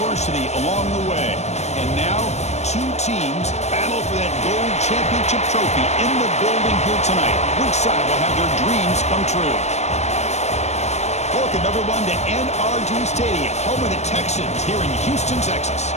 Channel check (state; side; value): late; right; 0.32 ms